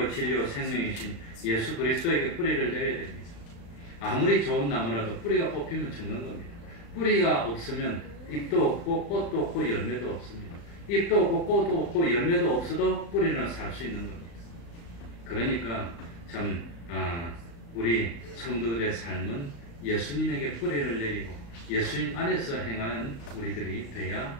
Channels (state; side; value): late; right; 35 ms